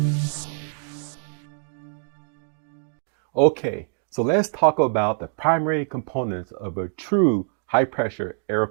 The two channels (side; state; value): left; silent; 62 dB below the other